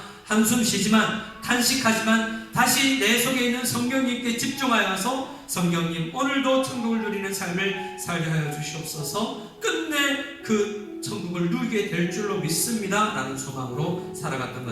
한숨 쉬지만 탄식하지만 다시 내 속에 있는 성령님께 집중하여서 성령님 오늘도 천국을 누리는 삶을 살게 하여 주시옵소서. 끝내 그 천국을 누리게 될 줄로 믿습니다 라는 소망으로 살아갔던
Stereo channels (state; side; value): identical; both; correlation 1.00